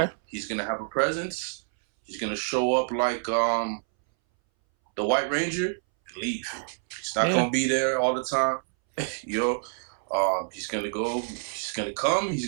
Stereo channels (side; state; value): left; silent; 60 dB below the other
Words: He's gonna have a presence. He's gonna show up like the White Ranger and leave. He's not gonna be there all the time. He's gonna go. He's gonna come. He's